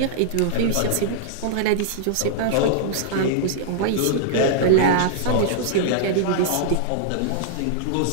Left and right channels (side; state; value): both; different; correlation -0.01